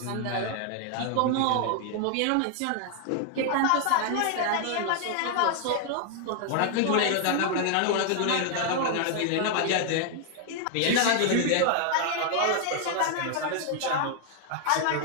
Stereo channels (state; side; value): different; both; correlation 0.00